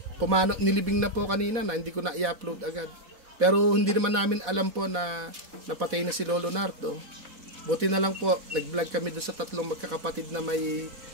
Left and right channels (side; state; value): left; late; 4.1 ms